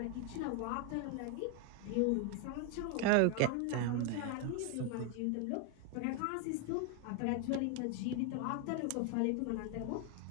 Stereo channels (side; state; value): both; different; correlation 0.01